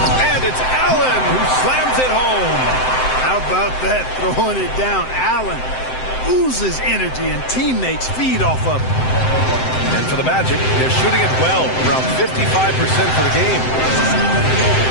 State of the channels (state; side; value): late; right; 7.8 ms